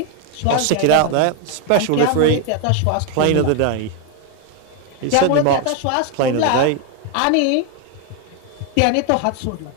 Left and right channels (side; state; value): both; different; correlation 0.01